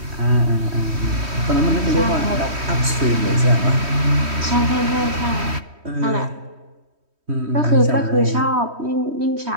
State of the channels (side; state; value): left; late; 3.1 ms